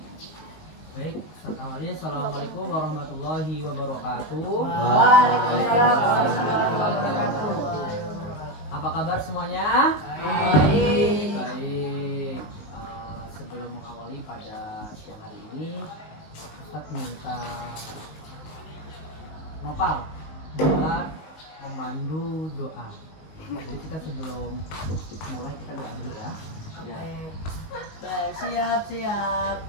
Baik, awalnya assalamualaikum warahmatullahi wabarakatuh. Waalaikumsalam warahmatullahi wabarakatuh. Apa kabar semuanya? Baik. Baik. Sebelum mengawali pada siang hari ini, Ustadz minta Nopal buat memandu doa. Jadi kita sebelum mulai kita doa dulu ya.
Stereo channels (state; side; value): late; right; 19 ms